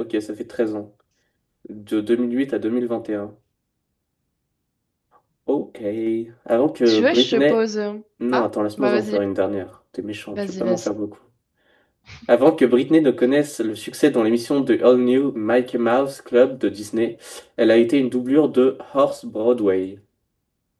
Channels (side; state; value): both; identical; correlation 1.00